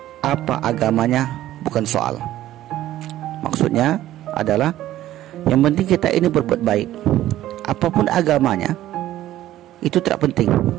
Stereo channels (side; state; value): left; quieter; 13.8 dB